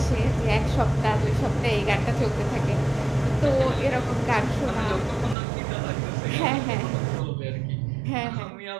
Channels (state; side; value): drops out; left; at 5.4 s